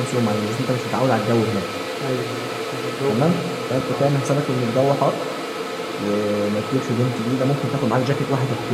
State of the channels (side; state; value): both; identical; correlation 1.00